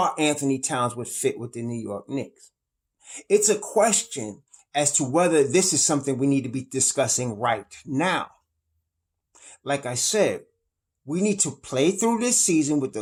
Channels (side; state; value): both; identical; correlation 1.00